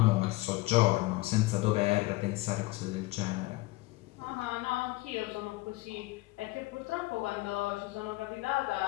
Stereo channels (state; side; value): quieter; right; 20.5 dB